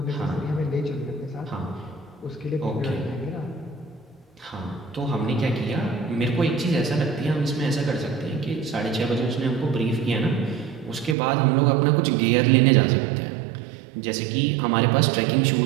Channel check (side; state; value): left; drops out; at 11.2 s